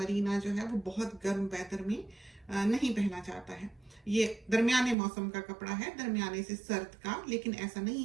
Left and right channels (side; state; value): left; drops out; at 5.0 s